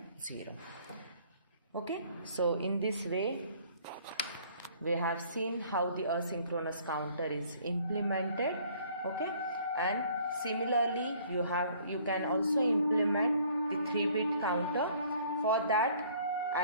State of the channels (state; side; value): inverted; both; correlation -0.57